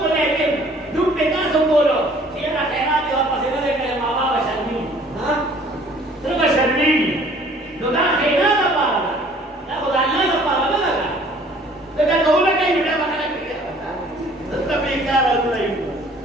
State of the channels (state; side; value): normal; both; correlation 0.55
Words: لیکن دکھ پہ کاسو بولو چیرا خیرات دیو پسی نہ دے کرے ماما بشرمی تر بشرمی نو دا خیرات دا پارا دا خدا اللہ دا پارا دا لگا لیکن کہو لگا ہی بڑا بکرہ کیا تبرا بیکار ہو رہی